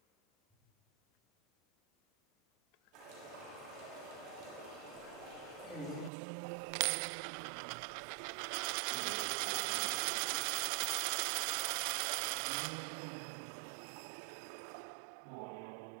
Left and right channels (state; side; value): drops out; left; at 6.1 s